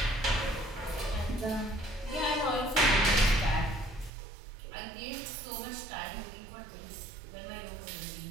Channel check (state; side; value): drops out; left; at 4.1 s